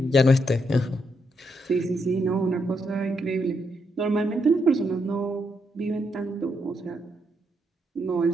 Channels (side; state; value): both; normal; correlation 0.79